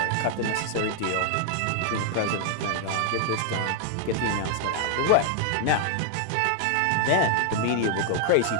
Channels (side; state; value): both; different; correlation 0.00